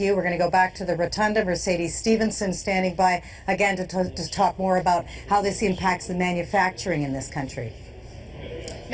We're going to go back to the Rotunda. Mercedes Stevenson standing by again to talk more about how this impacts the manufacturing in this country.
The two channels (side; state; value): both; identical; correlation 1.00